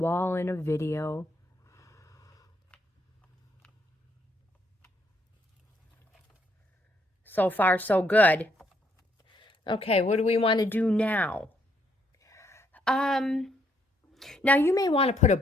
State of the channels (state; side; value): normal; both; correlation 0.72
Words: in a video. So far, so good. Okay, what do we want to do now? Now you may want to put a